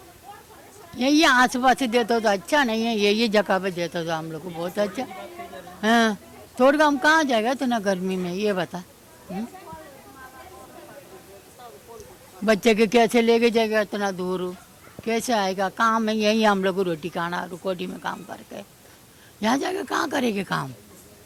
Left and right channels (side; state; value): both; identical; correlation 1.00